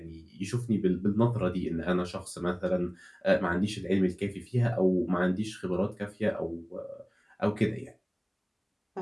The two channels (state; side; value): identical; both; correlation 1.00